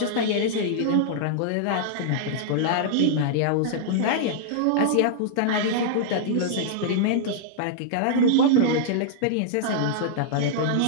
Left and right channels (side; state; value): both; different; correlation -0.02